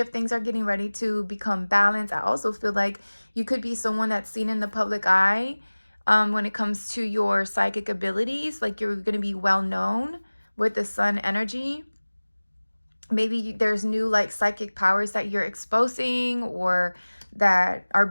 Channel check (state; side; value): inverted; both; correlation -1.00